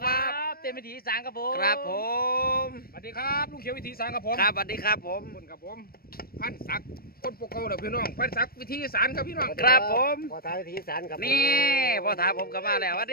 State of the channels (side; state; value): right; late; 0.44 ms